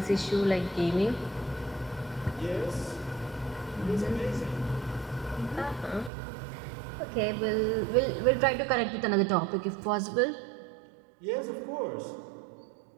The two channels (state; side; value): drops out; left; at 6.1 s